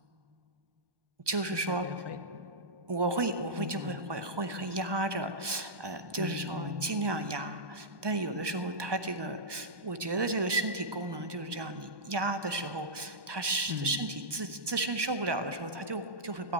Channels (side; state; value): left; late; 1.2 ms